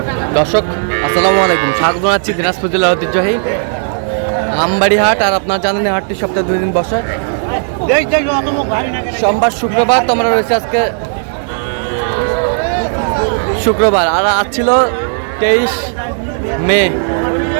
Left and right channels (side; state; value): left; silent; digital silence